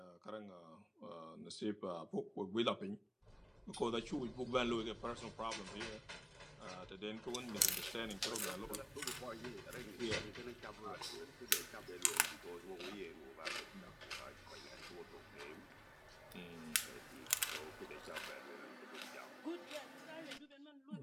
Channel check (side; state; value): both; identical; correlation 1.00